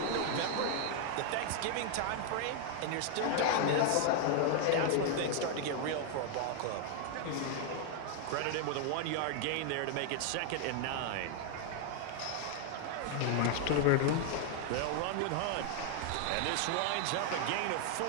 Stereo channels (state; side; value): different; both; correlation 0.00